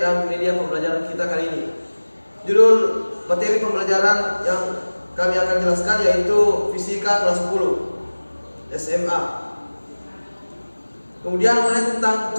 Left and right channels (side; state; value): both; inverted; correlation -1.00